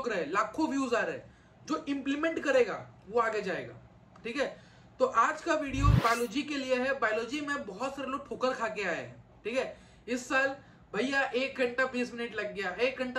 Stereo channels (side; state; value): both; identical; correlation 1.00